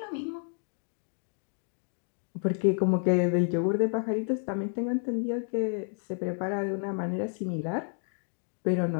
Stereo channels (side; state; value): right; silent; 57 dB below the other